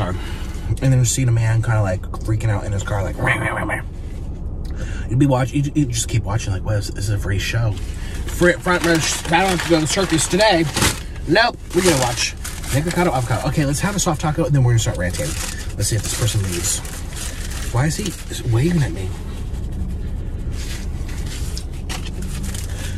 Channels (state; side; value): identical; both; correlation 1.00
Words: And then just seeing a man kind of like freaking out in his car, like, you'd be watching, you just keep watching, like, what is this? A free show? Front row, I don't have to go to the circus today. Nope, we're gonna watch Nikocado avocado. Okay, let's have a soft taco and then we're gonna start ranting. Let's see if this person leaves. Why is he waving at me?